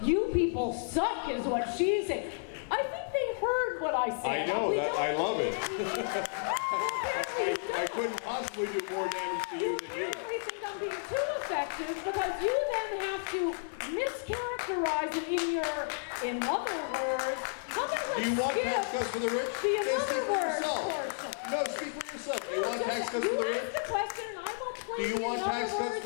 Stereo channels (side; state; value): right; silent; digital silence